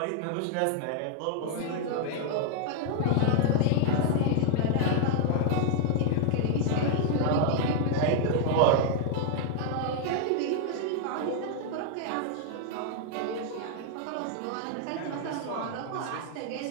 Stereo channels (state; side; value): different; both; correlation 0.00